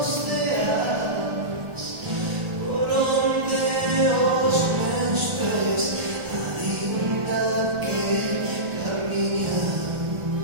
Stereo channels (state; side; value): late; left; 1.4 ms